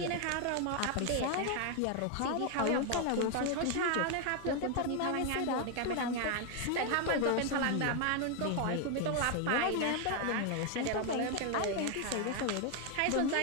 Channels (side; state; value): both; different; correlation 0.01